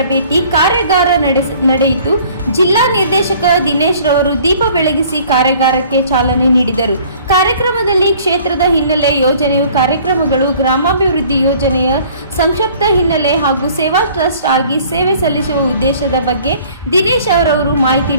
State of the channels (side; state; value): both; inverted; correlation -0.53